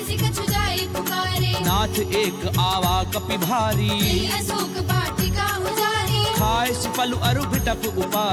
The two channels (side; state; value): both; identical; correlation 1.00